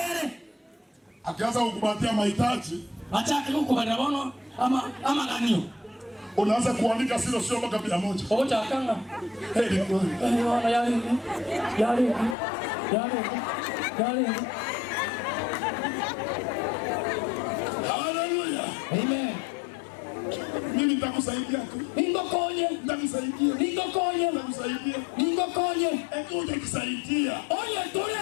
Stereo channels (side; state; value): right; drops out; at 12.4 s